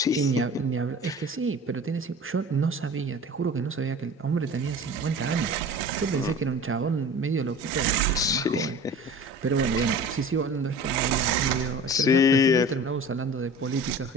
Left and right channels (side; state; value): both; normal; correlation 0.39